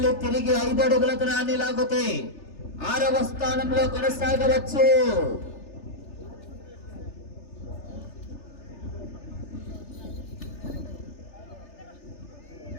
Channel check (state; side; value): late; right; 3.3 ms